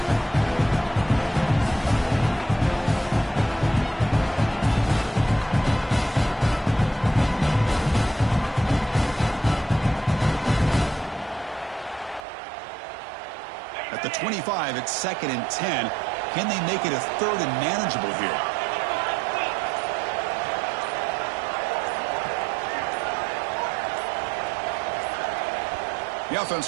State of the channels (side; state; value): left; drops out; at 12.2 s